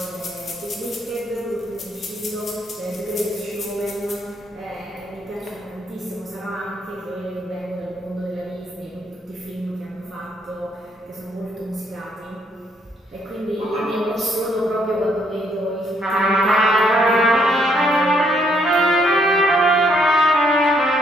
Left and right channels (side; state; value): both; normal; correlation 0.71